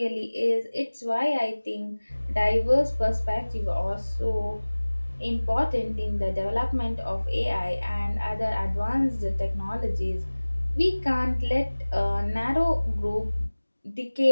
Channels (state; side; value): inverted; both; correlation -1.00